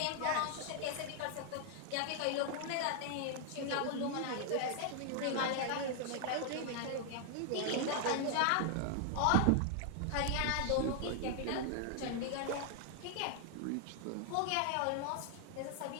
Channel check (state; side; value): different; both; correlation 0.00